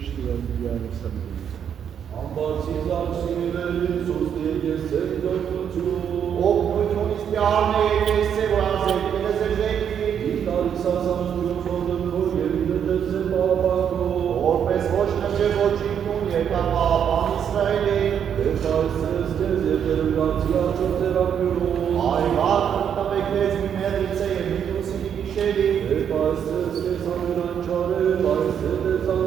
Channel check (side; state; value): left; quieter; 8.4 dB